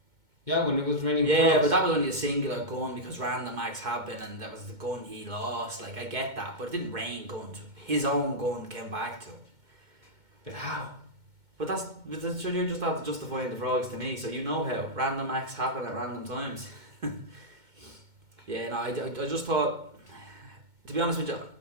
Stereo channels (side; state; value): left; late; 2.2 ms